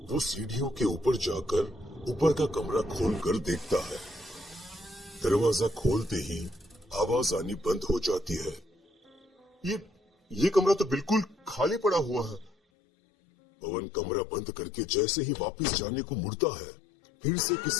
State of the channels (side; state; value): right; drops out; at 12.6 s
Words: वो सीढ़ियों के ऊपर जाकर ऊपर का कमरा खोलकर देखता है। दरवाजा खोलते ही आवाज आनी बंद हो जाती है। ये कमरा तो बिल्कुल खाली पड़ा हुआ है। पवन कमरा बंद करके जैसे ही वापस जाने को मुड़ता है, फिर से